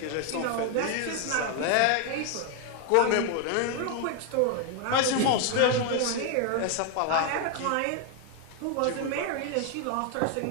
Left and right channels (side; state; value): both; different; correlation 0.01